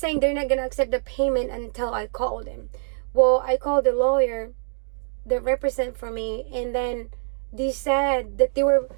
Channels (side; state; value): left; silent; digital silence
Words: they're not gonna accept the payment until I call them. Well, I called the lawyer that represent for me, and then they said that they were